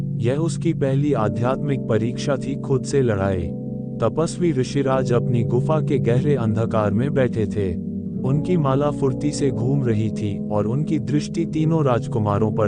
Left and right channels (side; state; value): both; identical; correlation 1.00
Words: यह उसकी पहली आध्यात्मिक परीक्षा थी, खुद से लड़ाई। तपस्वी ऋषिराज अपनी गुफा के गहरे अंधकार में बैठे थे। उनकी माला फुर्ती से घूम रही थी और उनकी दृष्टि तीनों राजकुमारों